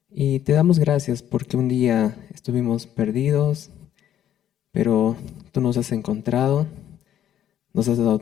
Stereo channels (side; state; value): right; quieter; 10.6 dB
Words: Y te damos gracias porque un día estuvimos perdidos, pero tú nos has encontrado, nos has dado